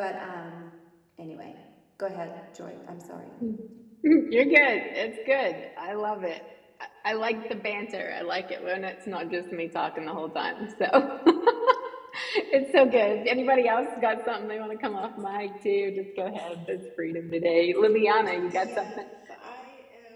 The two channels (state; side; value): identical; both; correlation 1.00